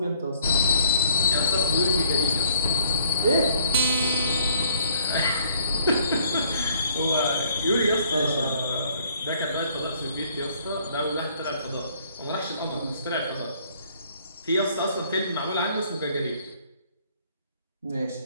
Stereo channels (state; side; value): inverted; both; correlation -0.63